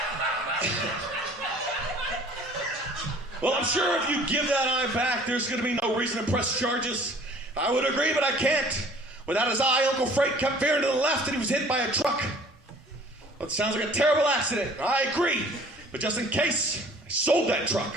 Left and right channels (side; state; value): both; normal; correlation 0.51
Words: Well, I'm sure if you give that eye back, there's going to be no reason to press charges. I would agree, but I can't. Without his eye, Uncle Frank kept veering to the left and he was hit by a truck. Well, it sounds like a terrible accident. I agree. But just in case, I sold that truck.